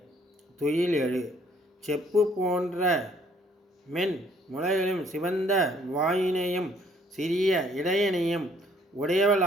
துயில் எழு. செப்பு போன்ற மென் முளைகளும் சிவந்த வாயினையும் சிறிய இடையனையும்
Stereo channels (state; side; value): normal; both; correlation 0.62